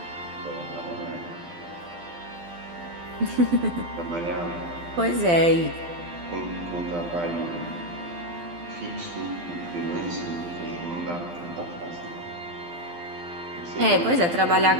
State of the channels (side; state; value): left; late; 12 ms